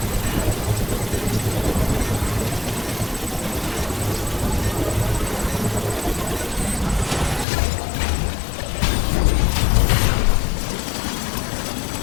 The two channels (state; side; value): drops out; right; at 7.5 s